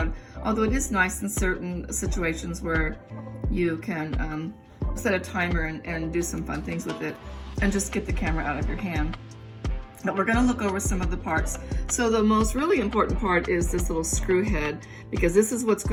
although it is nice in certain situations where you can set a timer and do some fun things with it and just get the camera out of your hand. But we're going to look over some of the parts. So the most really important part is this little screw head, because this is what's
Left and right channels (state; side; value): identical; both; correlation 1.00